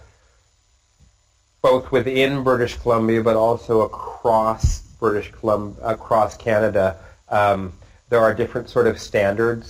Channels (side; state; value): both; identical; correlation 1.00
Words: both within British Columbia, but also across across Canada, there are different sort of